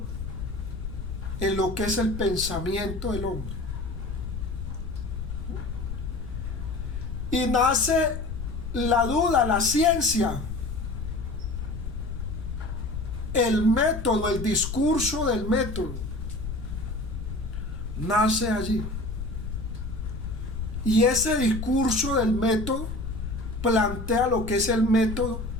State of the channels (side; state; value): left; noise; rumble, 6 dB below the sound